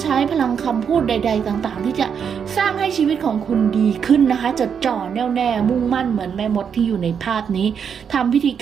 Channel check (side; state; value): left; quieter; 7.2 dB